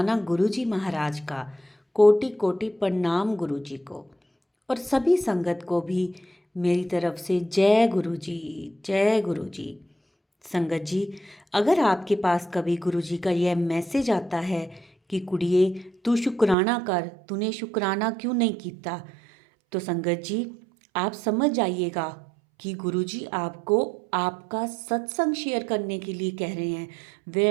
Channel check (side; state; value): left; drops out; at 16.6 s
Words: गुरु जी महाराज का। कोटि कोटि प्रणाम गुरु जी को। और सभी संगत को भी मेरी तरफ से जय गुरु जी। जय गुरु जी। संगत जी, अगर आपके पास कभी गुरु जी का यह मैसेज आता है कि कुड़िए तू शुक्राना कर, तूने शुक्राना क्यों नहीं किया, तो संगत जी आप समझ जाइएगा कि गुरुजी आपको आपका सत्संग शेयर करने के लिए कह रहे हैं। वे